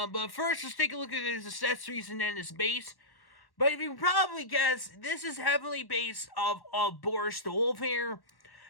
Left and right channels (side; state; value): right; late; 1.1 ms